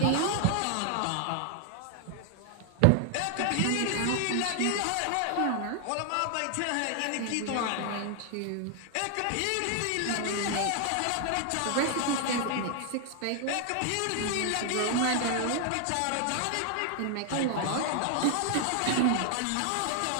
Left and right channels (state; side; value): different; both; correlation 0.00